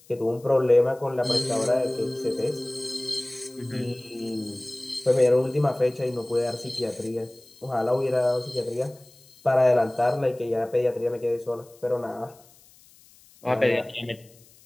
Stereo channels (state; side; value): noise; left; hiss, 27 dB below the sound